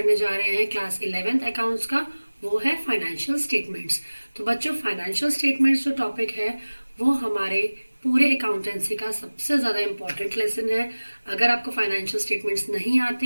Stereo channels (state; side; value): inverted; both; correlation -1.00